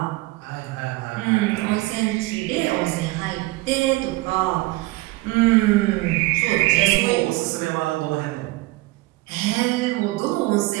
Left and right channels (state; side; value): quieter; left; 20.3 dB